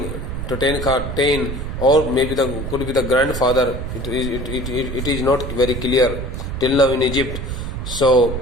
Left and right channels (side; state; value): right; noise; rumble, 5 dB below the sound